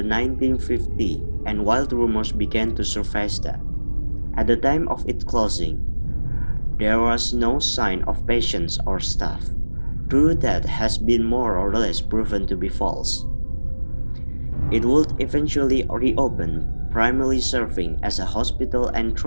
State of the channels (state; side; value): inverted; both; correlation -1.00